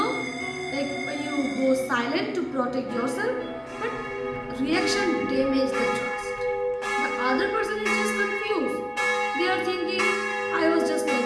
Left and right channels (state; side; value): identical; both; correlation 1.00